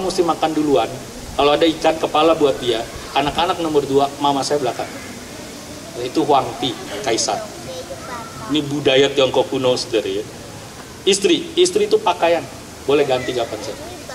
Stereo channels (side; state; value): both; identical; correlation 1.00